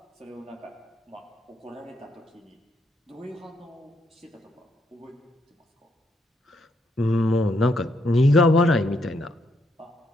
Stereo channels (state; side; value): normal; both; correlation 0.76